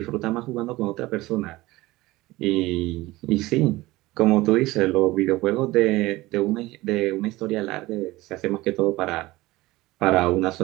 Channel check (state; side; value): quieter; left; 19.3 dB